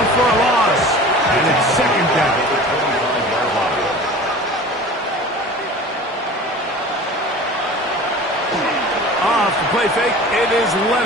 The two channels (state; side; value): normal; both; correlation 0.39